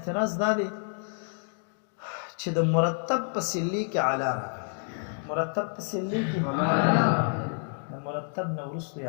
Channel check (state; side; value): silent; right; digital silence